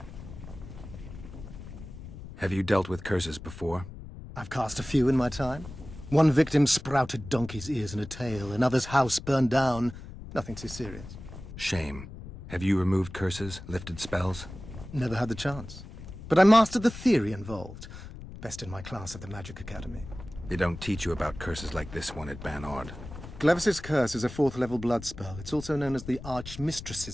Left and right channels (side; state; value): left; noise; rumble, 13 dB below the sound